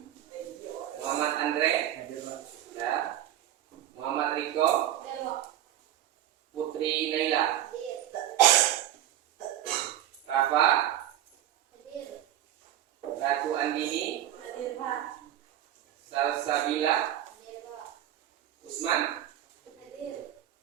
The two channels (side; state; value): left; quieter; 12.1 dB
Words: Muhammad Andre, ya, Muhammad Riko, Putri Naila, Rafa, Ratu Andini, Salsabila, Usman,